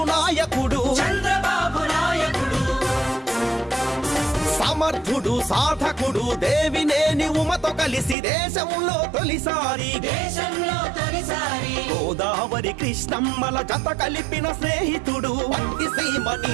నాయకుడు సమర్థుడు సాధకుడు దేవినేని ఉమతో కలిసి దేశంలో తొలిసారి గోదావరి కృష్ణమ్మల జత కలిపిన స్నేహితుడు పత్తి సీమ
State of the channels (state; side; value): drops out; left; at 8.2 s